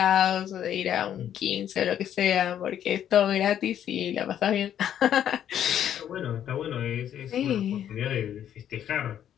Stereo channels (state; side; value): quieter; right; 10.2 dB